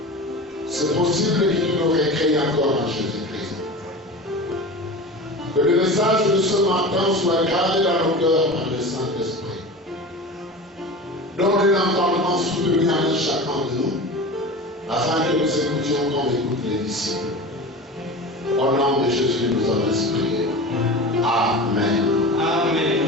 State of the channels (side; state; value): both; normal; correlation 0.32